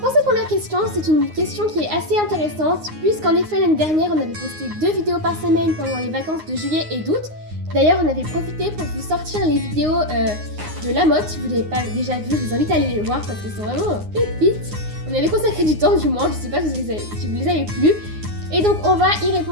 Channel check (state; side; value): late; left; 9.6 ms